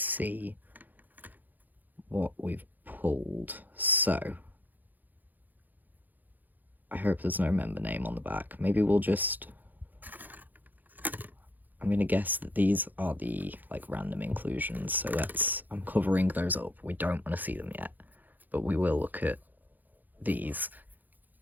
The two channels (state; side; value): late; left; 0.085 ms